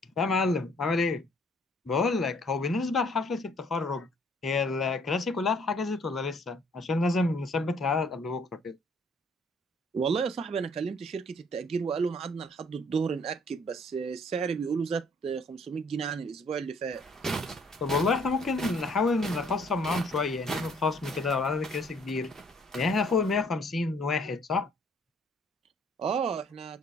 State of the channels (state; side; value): normal; both; correlation 0.61